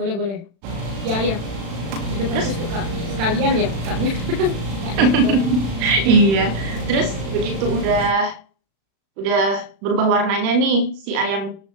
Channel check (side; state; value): left; late; 36 ms